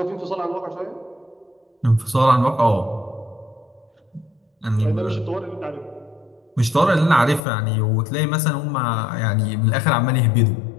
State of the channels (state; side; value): drops out; right; at 7.4 s